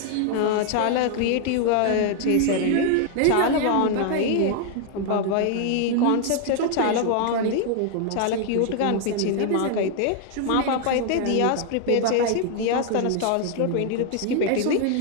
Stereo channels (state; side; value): different; both; correlation 0.00